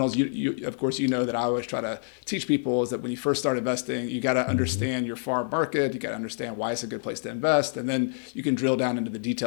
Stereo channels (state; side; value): silent; right; digital silence